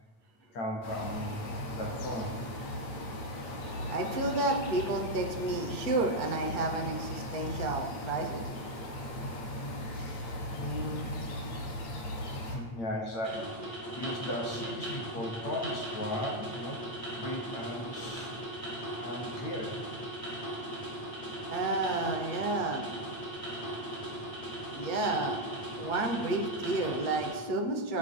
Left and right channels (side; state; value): right; late; 8.8 ms